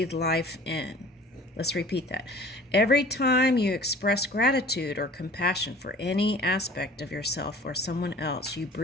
life in. Let's repeat that. Every time you express gratitude or compassion for any aspect of yourself or someone else, you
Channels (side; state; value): both; normal; correlation 0.47